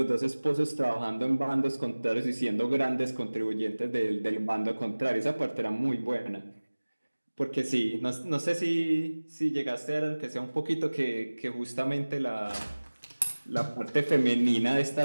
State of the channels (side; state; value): both; inverted; correlation -1.00